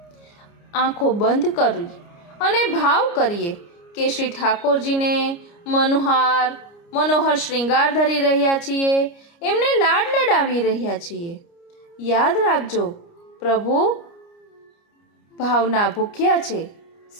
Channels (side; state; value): right; late; 29 ms